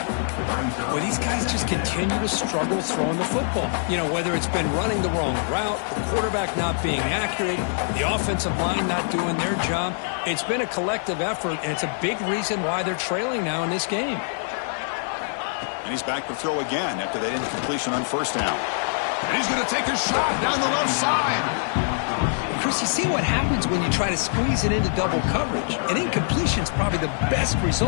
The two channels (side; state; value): right; silent; 62 dB below the other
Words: Well, these guys just continue to struggle throwing the football. You know, whether it's been running the wrong route, the quarterback not being accurate, the offensive line not doing their job. It's been a collective effort, and it's a big reason why they're trailing now in this game. And he's back to throw again after that incompletion on first down. And he's going to take a shot down the left side. Chris, you see what happens when you try to squeeze it into double coverage. An incompletion is probably the best